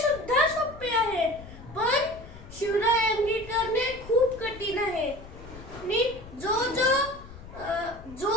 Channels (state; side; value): noise; left; rumble, 16 dB below the sound